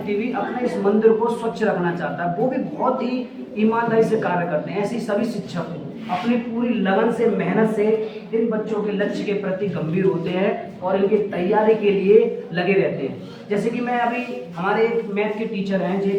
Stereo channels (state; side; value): identical; both; correlation 1.00